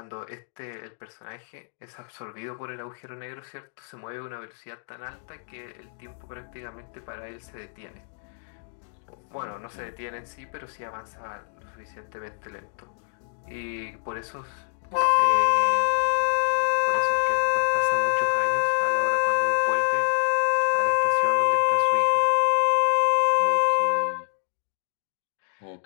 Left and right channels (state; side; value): silent; right; digital silence